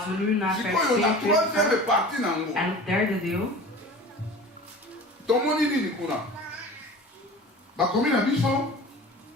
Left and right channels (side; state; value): both; normal; correlation 0.39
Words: we nu naar vers 42 gaan, en het derde deel. Tomoni nini kuna. Bakomi na biso